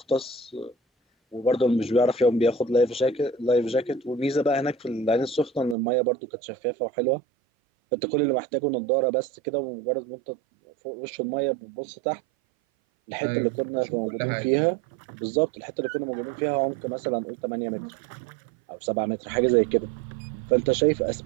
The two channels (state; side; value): drops out; left; at 5.8 s